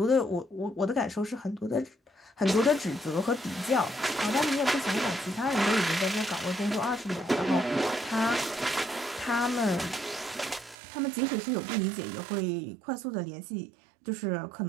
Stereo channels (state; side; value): drops out; left; at 10.8 s